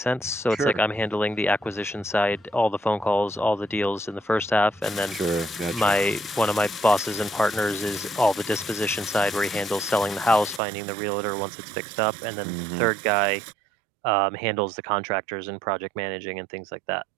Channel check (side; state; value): left; drops out; at 10.6 s